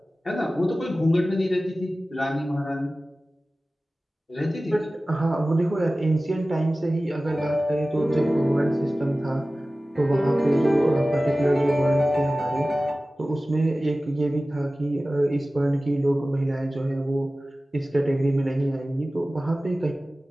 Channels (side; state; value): both; normal; correlation 0.96